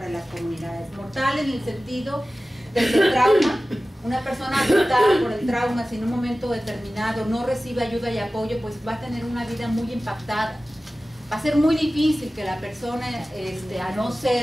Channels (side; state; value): both; normal; correlation 0.96